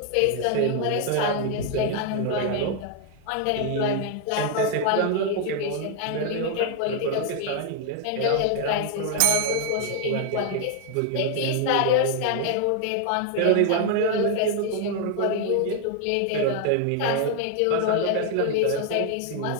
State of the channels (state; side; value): different; both; correlation 0.00